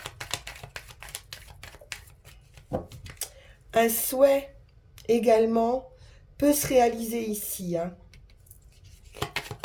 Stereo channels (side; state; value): both; identical; correlation 1.00